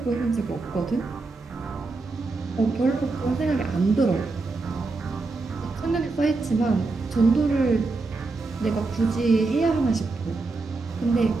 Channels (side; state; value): left; quieter; 3.6 dB